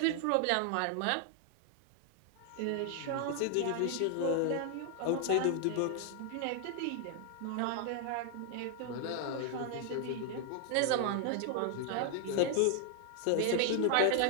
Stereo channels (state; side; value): different; both; correlation 0.00